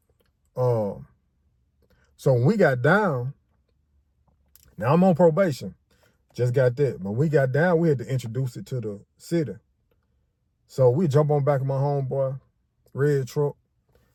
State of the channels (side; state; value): both; identical; correlation 1.00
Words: So when we got down, now I'm on probation, just got that. But when we got down, we had to introduce it to the city. So we jump on back of my homeboy, red truck.